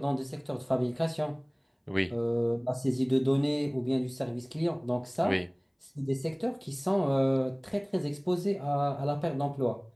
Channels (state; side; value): identical; both; correlation 1.00